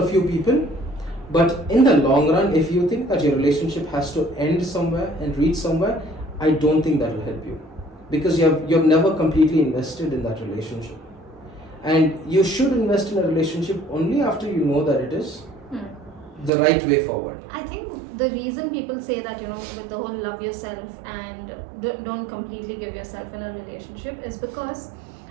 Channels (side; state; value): left; drops out; at 16.5 s